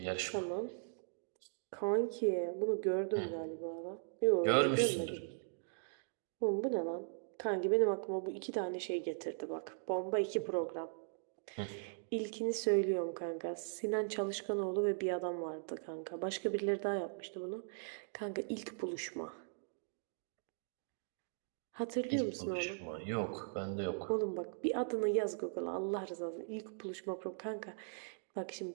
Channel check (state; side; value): silent; left; digital silence